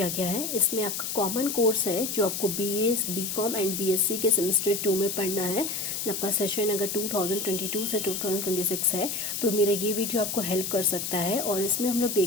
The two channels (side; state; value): left; noise; hiss, 3 dB below the sound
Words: गया है। इसमें आपका कॉमन कोर्स है जो आपको BA BCom एंड BSc के सेमेस्टर 2 में पढ़ना है। आपका सेशन अगर 2022 से 2026 है तो मेरा ये वीडियो आपको हेल्प कर सकता है। और इसमें हम लोग